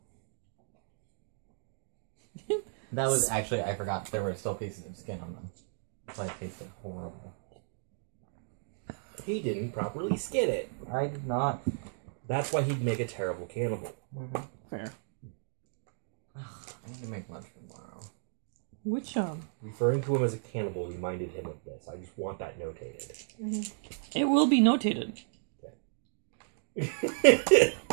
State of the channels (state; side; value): silent; left; digital silence